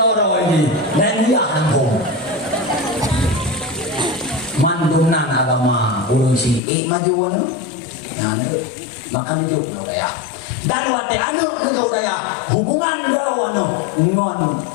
ini dan dia hantum. Mandumnan agama urusi maju anu. Nah, makan itu ya. Dan wate anu itu ya hubungan dawan ngon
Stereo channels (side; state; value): right; drops out; at 6.6 s